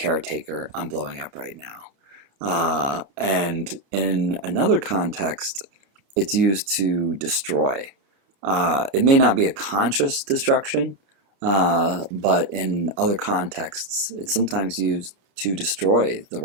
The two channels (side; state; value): left; late; 29 ms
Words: I'm blowing up right now. And in another context, it's used to destroy. It may not be a conscious destruction, but in other contexts, it's sometimes used to destroy the